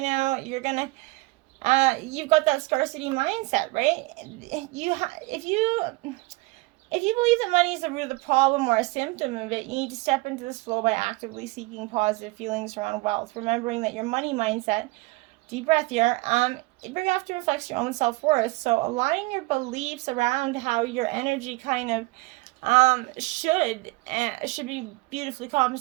now you're going to you've got that scarcity mindset, right? If you believe that money is the root of the problem or a symptom of it, you need to step into this flow by actively seeking positive feelings around wealth, remembering that your money mindset, deep breath here, it very often reflects your own self-worth. So align your beliefs around how your energy kind of should be beautifully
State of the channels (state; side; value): quieter; left; 23.6 dB